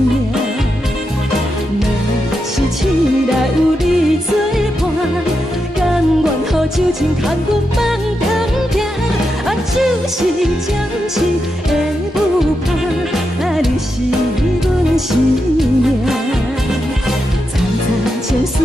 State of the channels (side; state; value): both; normal; correlation 0.86